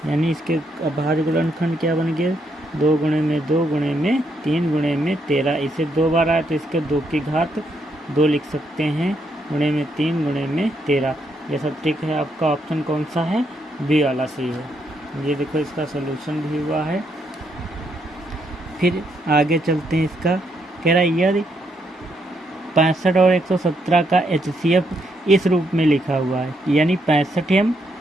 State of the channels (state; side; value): normal; both; correlation 0.76